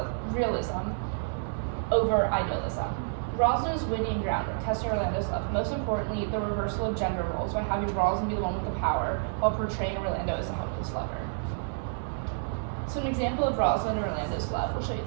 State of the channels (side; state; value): left; silent; digital silence